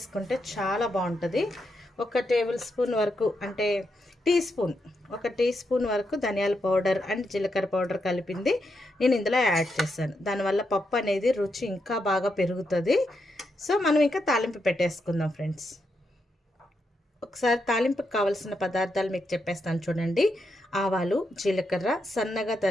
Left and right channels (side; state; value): both; normal; correlation 0.83